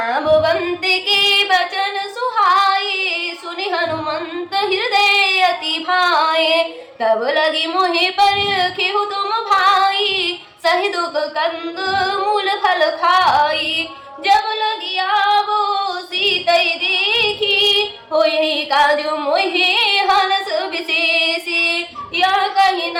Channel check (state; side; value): identical; both; correlation 1.00